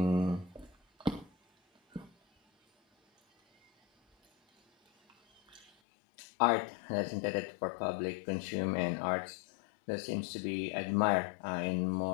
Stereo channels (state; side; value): drops out; right; at 5.7 s